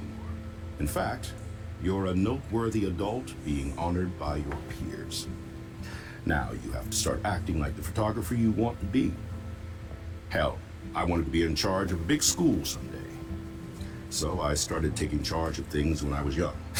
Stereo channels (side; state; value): both; identical; correlation 1.00